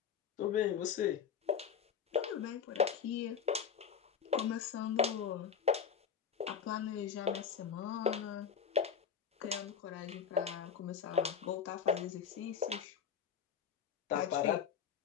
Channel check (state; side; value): quieter; right; 7.4 dB